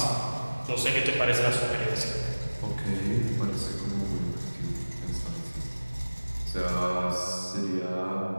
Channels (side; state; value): both; inverted; correlation -1.00